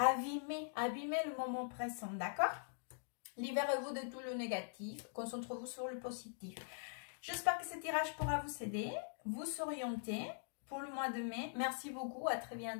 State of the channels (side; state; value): right; silent; digital silence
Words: le moment présent, d'accord? Libérez-vous de tout le négatif, concentrez-vous sur le positif. J'espère que ce tirage pourra vous aider, vous orienter pour le mois de mai. Merci beaucoup, à très